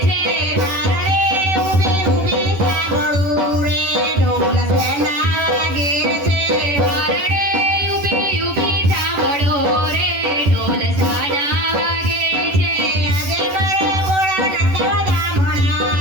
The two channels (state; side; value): late; left; 11 ms